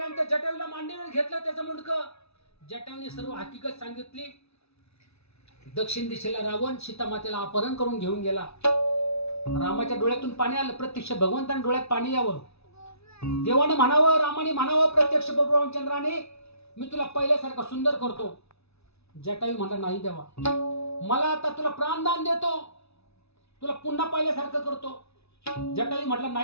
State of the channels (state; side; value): late; right; 0.80 ms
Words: जटायूला मांडीवर घेतलं त्याचं मुंडकं. जटायूने सर्व हकीकत सांगितली. दक्षिण दिशेला रावण सीता मातेला अपहरण करून घेऊन गेला. रामाच्या डोळ्यातून पाणी आलं, प्रत्यक्ष भगवंताने डोळ्यात पाणी यावं. देवाने म्हणावं, रामाने म्हणावं प्रत्यक्ष प्रभू रामचंद्राने, मी तुला पहिल्यासारखा सुंदर करतो. जटायू म्हणला, नाही देवा, मला आता तुला प्राणदान देतो, तुला पुन्हा पहिल्यासारखं करतो. जटायू म्हटला,